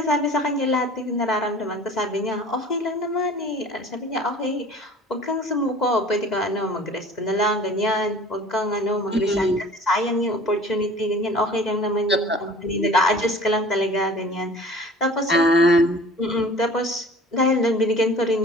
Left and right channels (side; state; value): both; normal; correlation 0.46